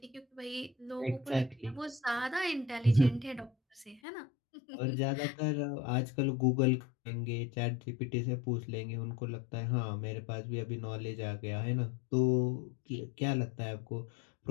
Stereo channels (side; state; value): right; drops out; at 4.0 s